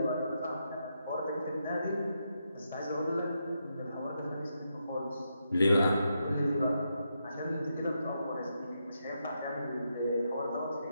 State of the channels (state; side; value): inverted; both; correlation -0.83